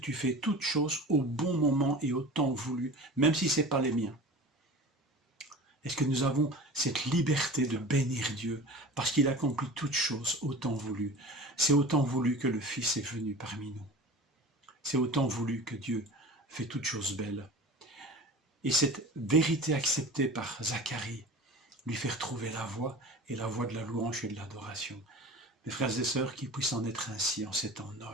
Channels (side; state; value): both; normal; correlation 0.37